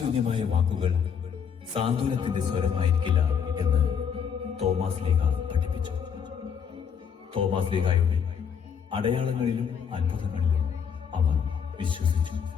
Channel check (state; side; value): quieter; right; 7.2 dB